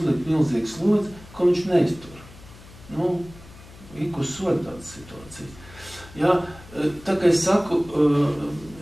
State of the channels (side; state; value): left; noise; hum, 20 dB below the sound